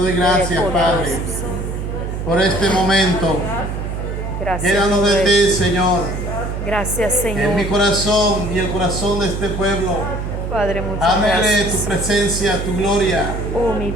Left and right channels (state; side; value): noise; right; hum, 4 dB below the sound